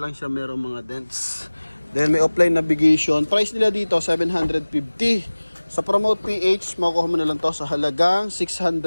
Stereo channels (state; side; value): inverted; both; correlation -1.00